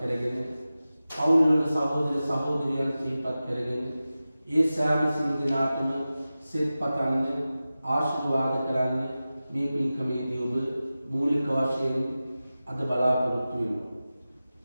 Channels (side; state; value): both; inverted; correlation -0.95